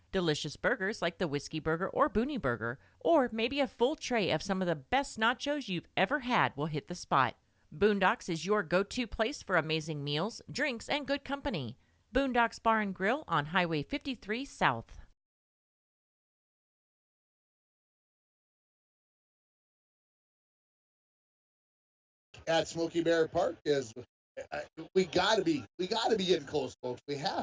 delicious burgers like the Whiskey Burger or Boonie Burger, or maybe a full tray of some of the best nachos you've ever had will hit the spot. Boondocks is your go-to place for amazing meals, drinks, and good company. Boondocks Bar and Grill on Highway 53 South. At Smoky Bear Park is we gotta be getting close, folks. We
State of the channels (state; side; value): identical; both; correlation 1.00